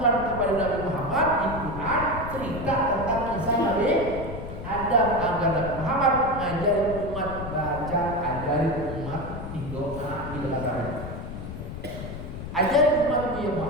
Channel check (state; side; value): noise; left; rumble, 8 dB below the sound